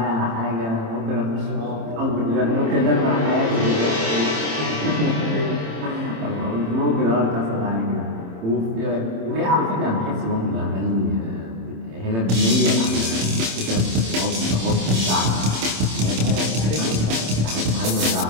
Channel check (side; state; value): left; late; 27 ms